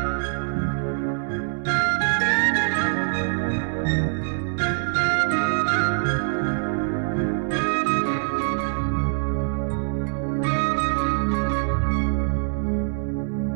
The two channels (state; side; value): silent; left; digital silence